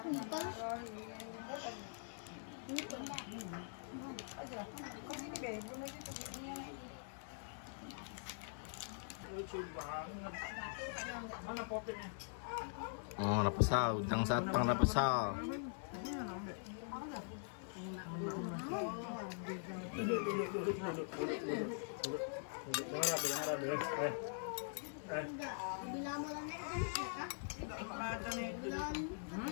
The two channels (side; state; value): right; silent; digital silence